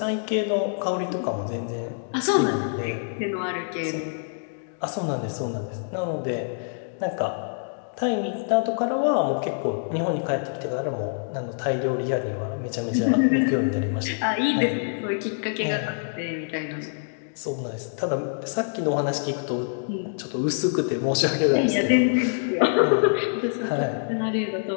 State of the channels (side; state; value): right; silent; digital silence